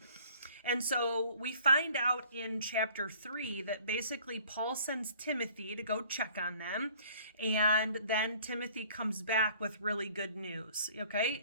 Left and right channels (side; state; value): both; inverted; correlation -0.54